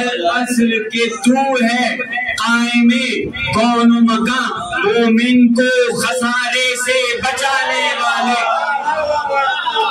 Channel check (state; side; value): identical; both; correlation 1.00